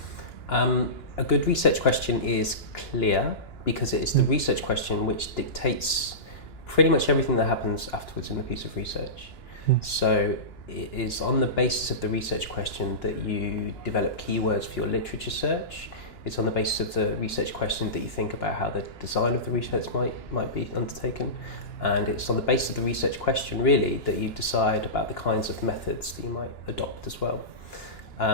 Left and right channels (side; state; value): right; late; 2.9 ms